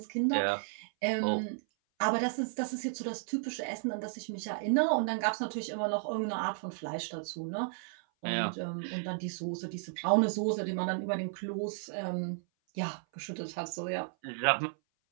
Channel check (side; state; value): left; silent; 55 dB below the other